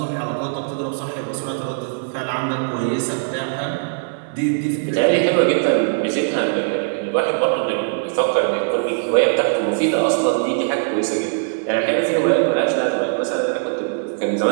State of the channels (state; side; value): silent; left; 58 dB below the other